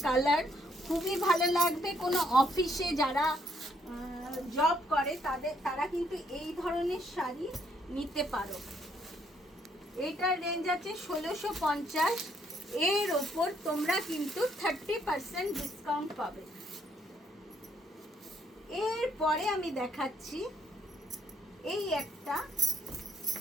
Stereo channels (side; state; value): both; normal; correlation 0.70